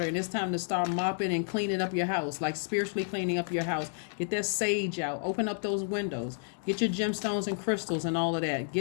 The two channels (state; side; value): silent; right; digital silence